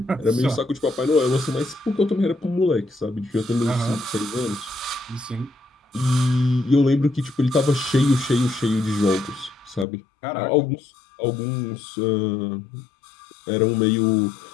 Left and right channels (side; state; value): right; drops out; at 9.9 s